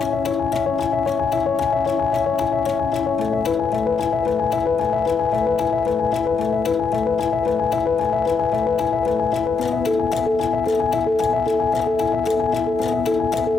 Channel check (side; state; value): right; quieter; 4.5 dB